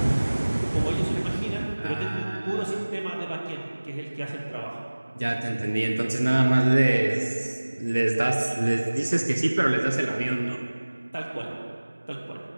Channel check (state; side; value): inverted; both; correlation -1.00